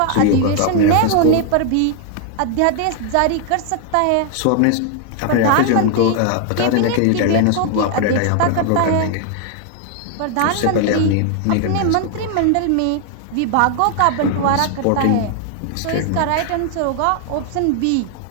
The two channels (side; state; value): both; different; correlation 0.00